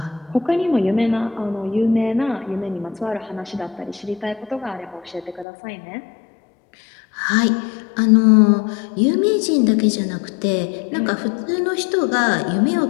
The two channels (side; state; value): right; drops out; at 5.5 s